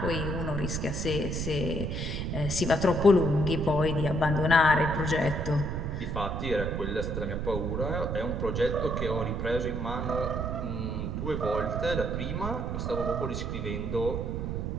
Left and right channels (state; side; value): noise; right; rumble, 2 dB below the sound